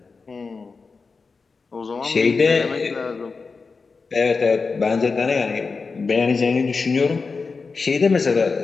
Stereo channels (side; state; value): right; quieter; 4.5 dB